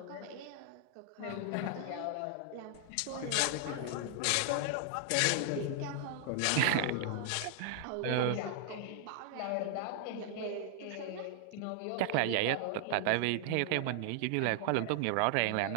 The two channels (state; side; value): different; both; correlation 0.00